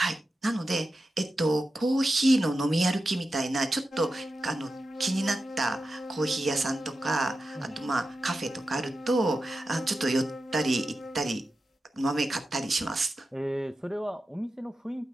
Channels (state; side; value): normal; both; correlation 0.92